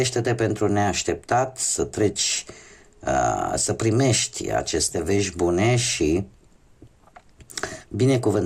pentru neașteptat, să treci, să primești aceste vești bune și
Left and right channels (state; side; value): identical; both; correlation 1.00